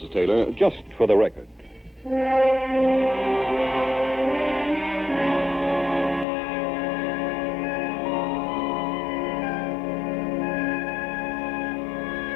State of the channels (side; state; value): right; drops out; at 6.2 s